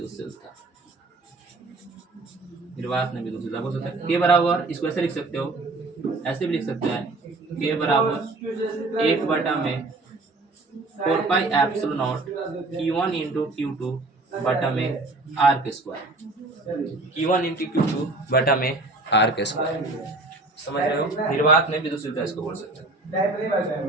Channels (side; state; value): left; quieter; 3.1 dB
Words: निर्वात में विद्युतशीलता बोल सकते हैं। के बराबर इसको ऐसे लिख सकते हो, ऐसे भी लिख सकते हैं के बराबर 1 बटा में 4 pi epsilon not Q1 into Q2 बटा में आर के स्क्वायर, Q1 इंटू Q2 बटा में आर के स्क्वायर, समझ रहे हो। निर्वात में विद्युतशीलता इसको बोल सकते हैं।